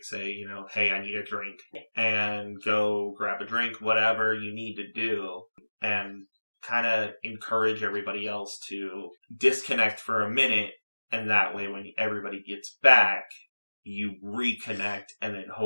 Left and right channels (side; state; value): both; inverted; correlation -1.00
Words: Say, hey, I need a drink, and go grab a drink, whatever you need to do, and kind of encourage everybody else to disconnect for a minute, and that way when everybody gets back, you reconnect, and then